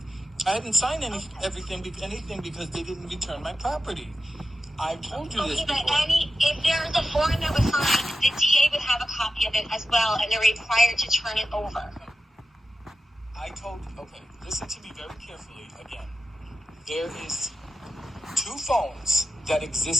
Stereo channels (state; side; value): normal; both; correlation 0.92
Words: I hadn't signed anything because they didn't return my property. I told you this before. If there's a form that was signed, the DA would have a copy of it as well, and they're required to turn it over. Okay, listen to me very carefully again. There is 2 phones that